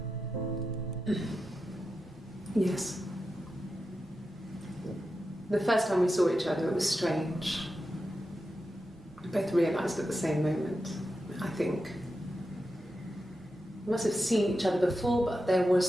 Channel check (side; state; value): right; noise; rumble, 24 dB below the sound